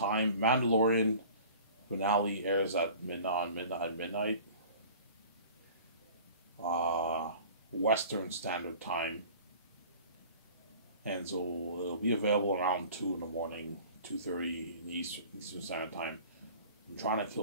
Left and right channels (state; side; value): inverted; both; correlation -0.45